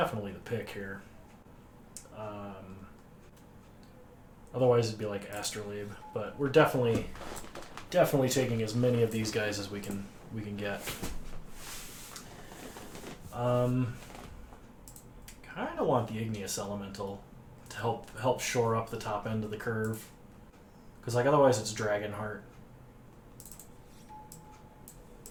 the pick here. Otherwise it'd be like Astrolabe, but we're definitely taking as many of these guys as we can get. Kind of want the Igneous Elemental to help shore up the top end of the curve, because otherwise it's Dragonheart.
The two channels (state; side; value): identical; both; correlation 1.00